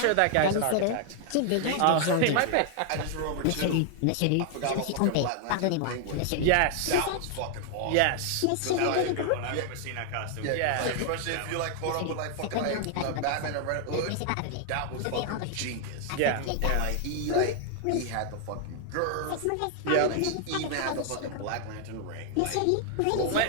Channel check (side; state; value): both; different; correlation 0.00